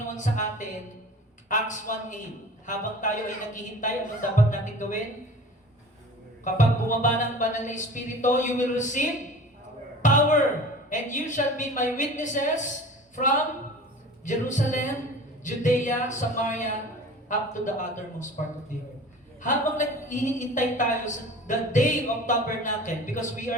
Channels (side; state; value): both; normal; correlation 0.41